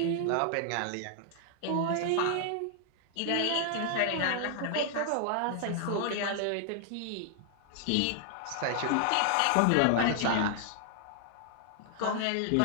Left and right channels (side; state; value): both; different; correlation 0.00